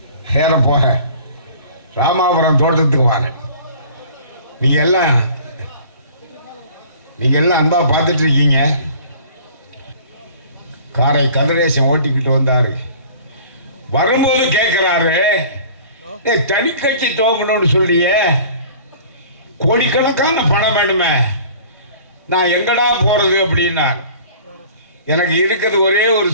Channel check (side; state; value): both; inverted; correlation -0.47